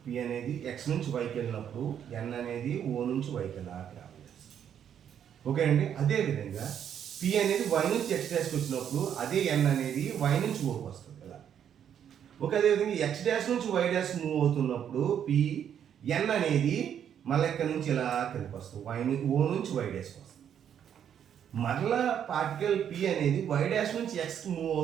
అనేది x నుంచి yకి వెళ్ళినప్పుడు n అనేది o నుంచి yకి వెళ్ళాలి. ఓకే అండి. అదేవిధంగా p అనేది y నుంచి x డాష్కి వచ్చినప్పుడు అదే n అనేది y నుంచి ఓకి వస్తుంది కదా. ఓకే, అదేవిధంగా x డాష్ నుంచి y డాష్ మూవ్ అవుతున్నప్పుడు p n అనేది మళ్ళీ ఇక్కడ నుంచి ఇలా కిందకి వస్తుంది, o నుంచి y డాష్కి వస్తుంది. మరలా పార్టికల్ p అనేది y డాష్ నుంచి x మూవ్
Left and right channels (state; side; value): quieter; left; 9.0 dB